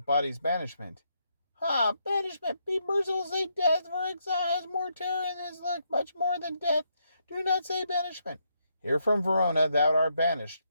body's banishment. Ha! Banishment! Be merciful, say death, for exile has more terror in his look, much more than death. Do not say banishment. Here from Verona thou art banished.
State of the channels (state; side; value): inverted; both; correlation -0.77